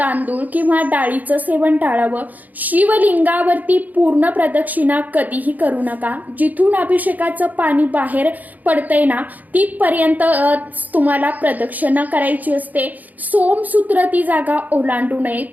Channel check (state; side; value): late; left; 0.081 ms